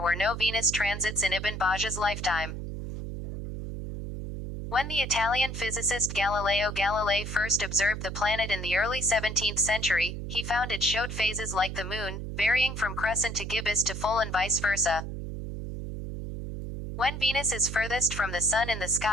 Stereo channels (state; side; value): noise; right; hum, 6 dB below the sound